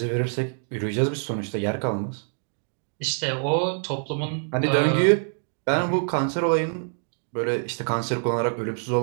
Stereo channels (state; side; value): silent; left; 61 dB below the other